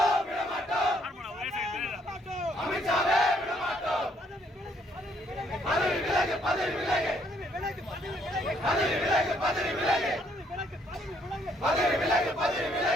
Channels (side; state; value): both; normal; correlation 0.68